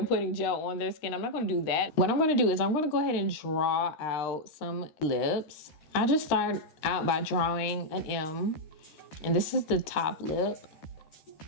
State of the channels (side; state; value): right; late; 13 ms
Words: putting gel on their skin. I'm not gonna do that. What I'm gonna do is I'm gonna go ahead and draw out some lips. I just start out by drawing an M, and this is the top lip.